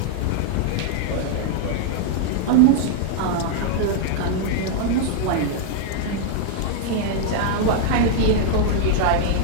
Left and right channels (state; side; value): different; both; correlation -0.01